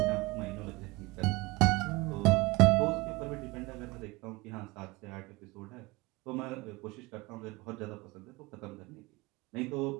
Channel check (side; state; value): left; quieter; 23.3 dB